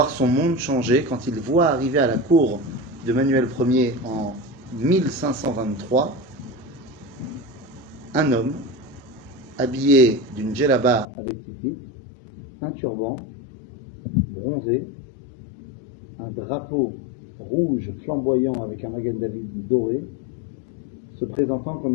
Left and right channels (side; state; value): right; drops out; at 11.1 s